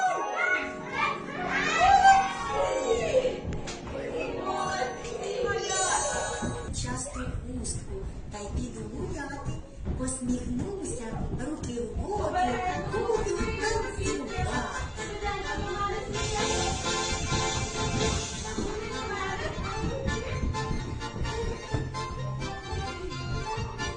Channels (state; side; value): identical; both; correlation 1.00